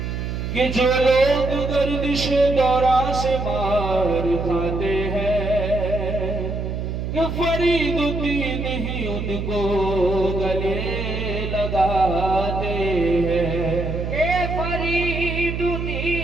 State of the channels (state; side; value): noise; right; hum, 4 dB below the sound